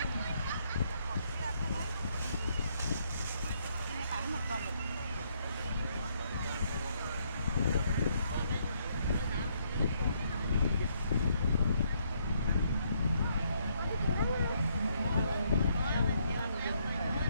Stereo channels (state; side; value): inverted; both; correlation -0.72